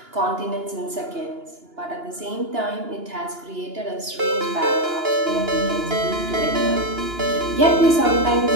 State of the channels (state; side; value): late; left; 2.9 ms